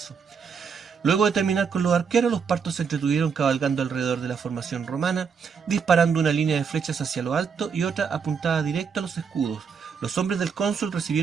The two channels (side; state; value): left; quieter; 6.2 dB